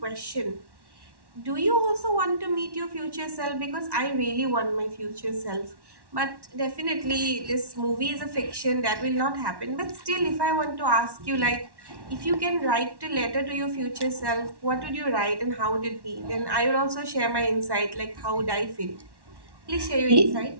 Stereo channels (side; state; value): left; late; 1.1 ms